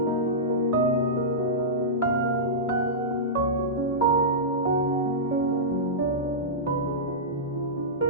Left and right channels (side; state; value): both; normal; correlation -0.14